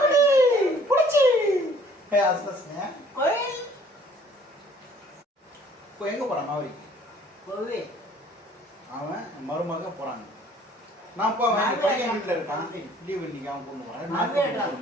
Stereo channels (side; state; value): both; normal; correlation 0.56